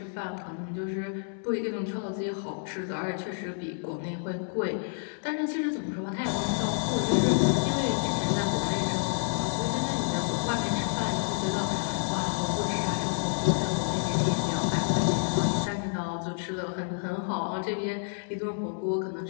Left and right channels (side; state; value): right; silent; digital silence